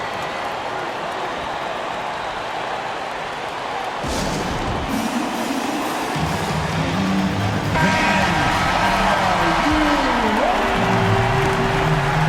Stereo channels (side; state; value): both; identical; correlation 1.00